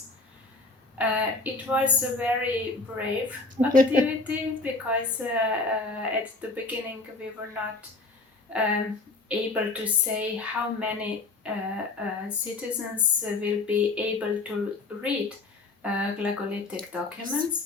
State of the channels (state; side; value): quieter; right; 3.5 dB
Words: It was a very brave activity because at the beginning we were not able to say how many citizens will be able to read Glagolitic